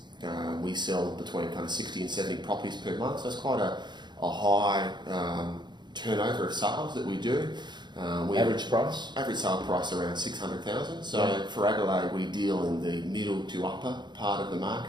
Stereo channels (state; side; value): late; left; 0.21 ms